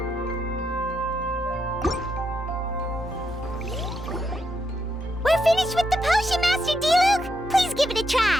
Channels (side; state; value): both; normal; correlation 0.81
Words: We're finished with the potion, Master D-Luke! Please give it a